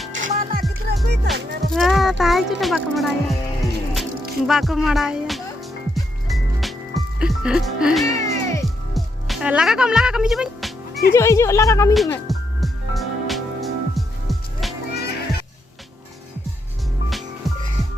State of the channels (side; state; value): both; normal; correlation 0.79